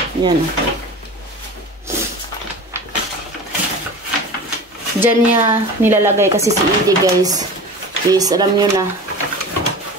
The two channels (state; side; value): normal; both; correlation 0.34